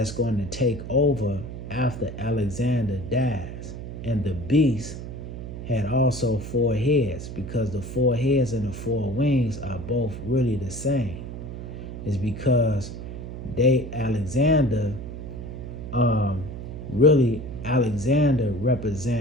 going to take over after Alexander dies. And the beast had also 4 heads, because the 4 heads and the 4 wings are both really the same. It's because Alexander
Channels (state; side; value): noise; right; hum, 9 dB below the sound